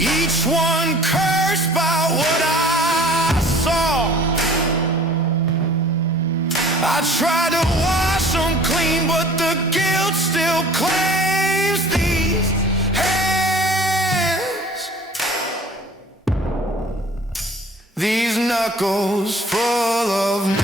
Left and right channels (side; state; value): both; normal; correlation 0.49